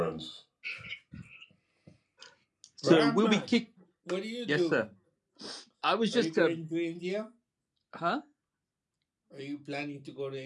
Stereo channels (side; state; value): both; identical; correlation 1.00